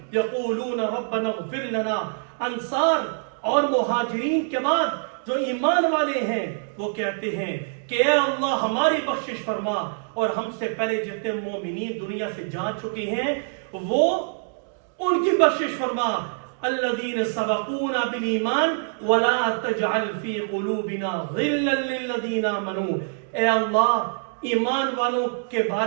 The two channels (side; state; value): left; silent; digital silence